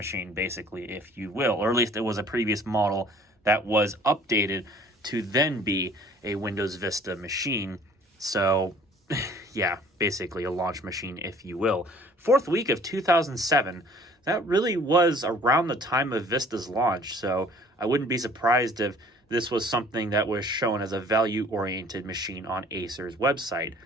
basically, if you will, or at least it was a previous model that was updated to then be a Windows Vista machine. So, yeah, basically a launch machine, if you will. 4th week of 2007, that really was around the time of Vista's launch, so I wouldn't be surprised if this was something that was shown as a value-oriented machine on Acer's website.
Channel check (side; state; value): both; normal; correlation 0.53